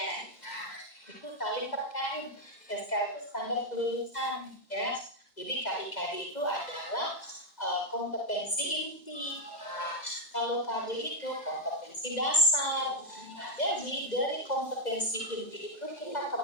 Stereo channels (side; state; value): right; late; 2.0 ms